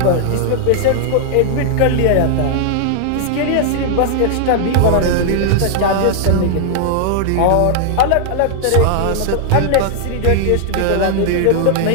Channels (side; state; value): both; different; correlation 0.00